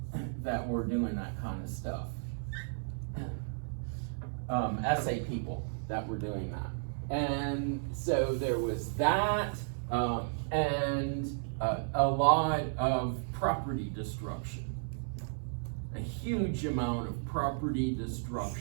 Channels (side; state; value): left; silent; 55 dB below the other